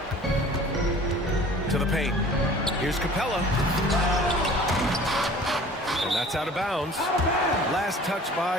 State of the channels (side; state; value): both; normal; correlation 0.46